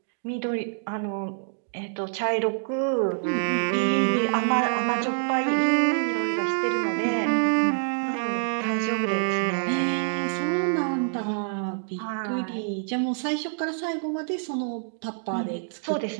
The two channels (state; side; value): silent; left; digital silence